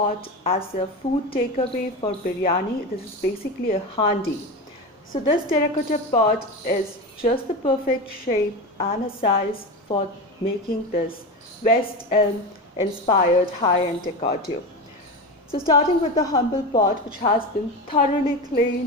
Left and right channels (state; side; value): normal; both; correlation 0.22